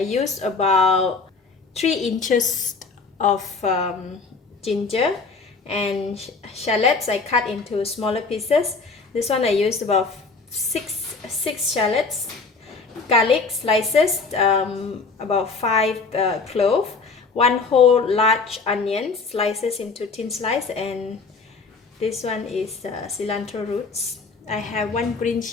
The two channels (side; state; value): right; quieter; 4.4 dB